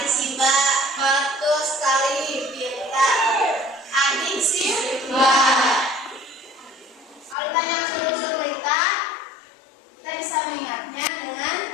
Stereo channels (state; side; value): drops out; right; at 7.4 s